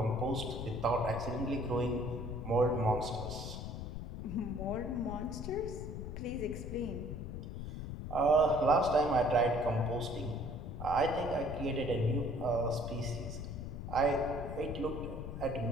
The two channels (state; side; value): noise; left; rumble, 7 dB below the sound